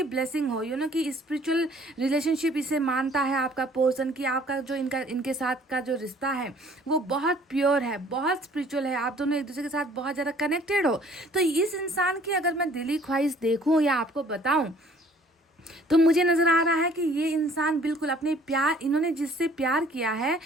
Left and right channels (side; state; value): both; normal; correlation 0.56